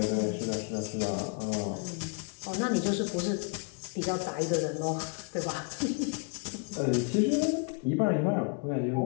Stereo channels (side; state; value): right; quieter; 37.0 dB